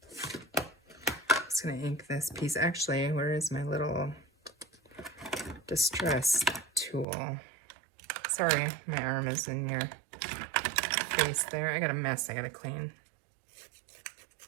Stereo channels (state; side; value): drops out; left; at 7.1 s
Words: Just gonna ink this piece. Actually, where is my little distress tool? Sorry, my arm is in your face there. I got a mess I gotta clean.